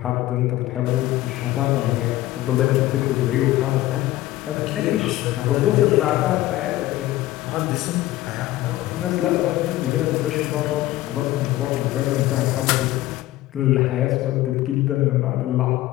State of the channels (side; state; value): right; quieter; 15.9 dB